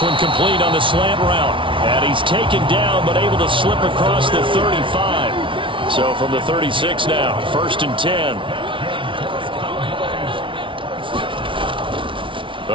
one complete on the slant route. And he's taken down, but able to slip across the 35. So from the 36 now, 1st and 10.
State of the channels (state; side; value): late; left; 0.25 ms